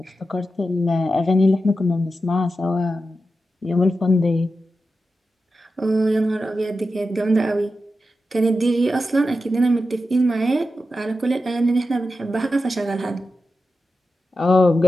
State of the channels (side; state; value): both; normal; correlation 0.91